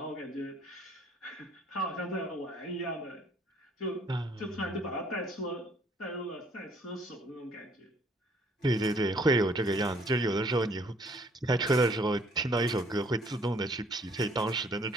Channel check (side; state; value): both; normal; correlation 0.61